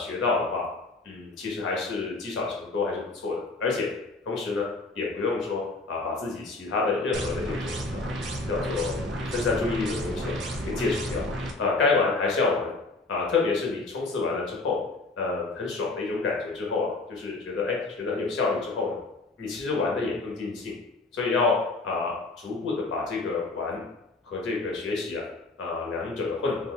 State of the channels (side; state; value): right; quieter; 3.3 dB